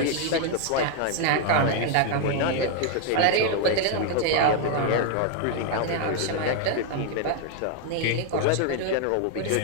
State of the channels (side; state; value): both; different; correlation 0.01